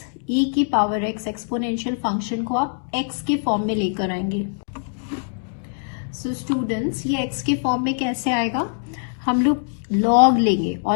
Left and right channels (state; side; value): silent; right; digital silence